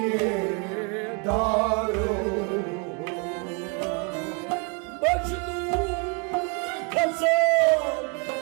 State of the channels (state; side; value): quieter; left; 35.0 dB